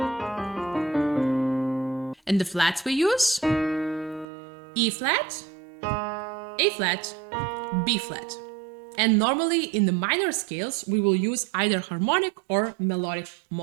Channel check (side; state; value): left; drops out; at 4.2 s